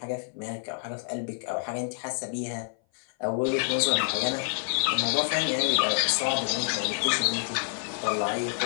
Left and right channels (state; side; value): silent; right; 57 dB below the other